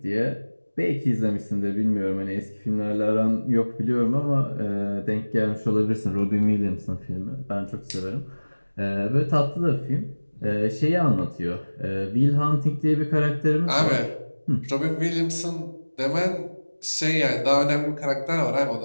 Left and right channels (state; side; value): inverted; both; correlation -1.00